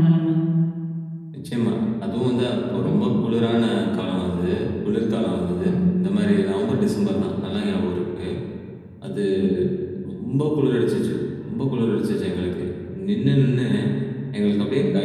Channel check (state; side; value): identical; both; correlation 1.00